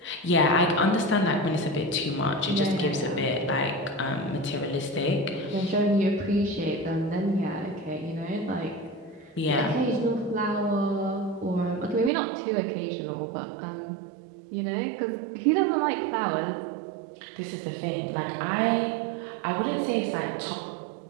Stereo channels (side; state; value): left; drops out; at 12.1 s